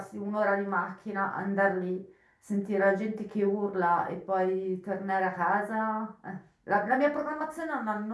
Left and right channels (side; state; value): both; identical; correlation 1.00